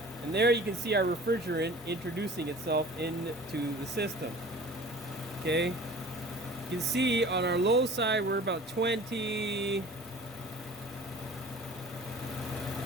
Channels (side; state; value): both; normal; correlation 0.44